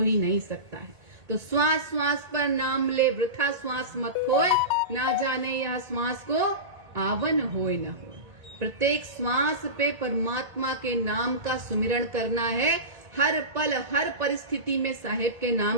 ही नहीं सकता है। तो श्वास श्वास पर नाम ले, वृथा श्वास मत होए, ना जाने यह श्वास को आवन होए न हो। प्रत्येक श्वास पे परमात्मा के नाम का सुमिरन करना है, हर पल, हर परिस्थिति में साहेब के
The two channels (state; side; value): late; left; 1.9 ms